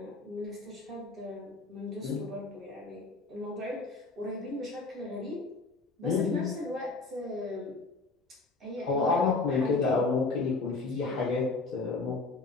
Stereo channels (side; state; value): right; quieter; 3.7 dB